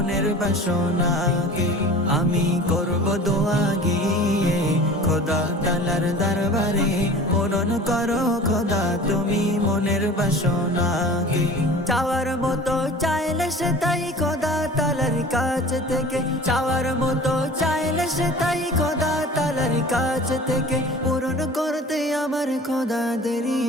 বাসনা। আমি করব দোয়া গিয়ে খোদা তালার দরবারে, পূরণ করো খোদা তুমি মনের বাসনা। চাওয়ার মতো চাইলে সে তাই খোদা তালার কাছ থেকে, চাওয়ার মতো চাইলে সে তাই খোদা তালার কাছ থেকে, পূরণ করতে আমার খোদা দেরি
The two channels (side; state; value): both; normal; correlation 0.41